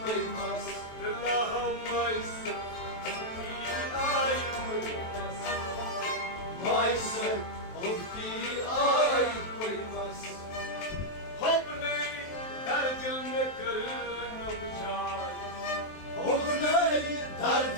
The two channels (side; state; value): right; late; 23 ms